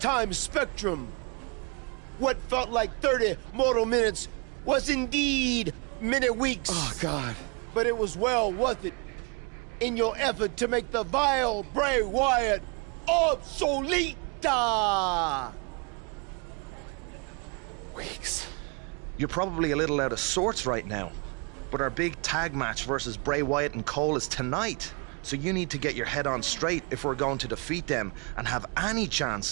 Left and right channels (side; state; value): left; quieter; 33.3 dB